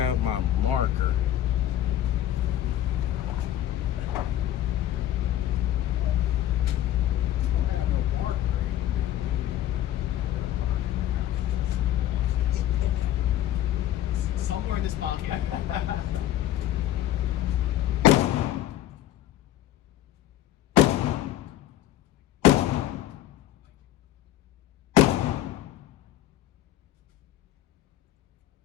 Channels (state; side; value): quieter; right; 12.6 dB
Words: my marker. Somewhere in this pocket.